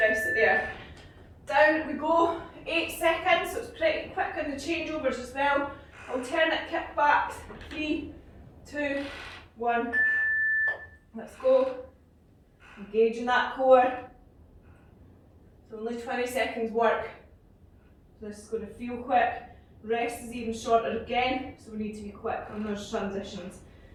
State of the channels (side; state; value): both; identical; correlation 1.00